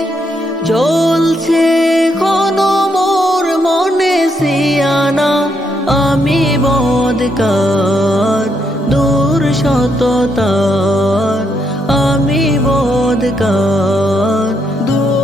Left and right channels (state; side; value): normal; both; correlation 0.77